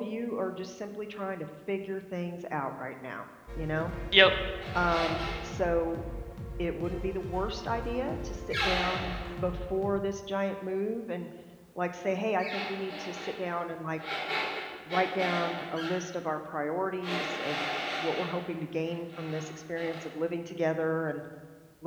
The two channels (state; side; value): identical; both; correlation 1.00